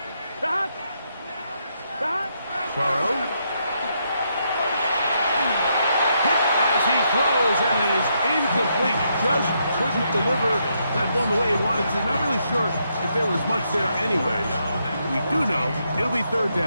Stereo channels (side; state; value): both; inverted; correlation -0.78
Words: Burrow. As he throws, and it is incomplete. Just couldn't deliver that one the way he wanted to. Not really sure if there was much there anyway. We do know it'll be 3rd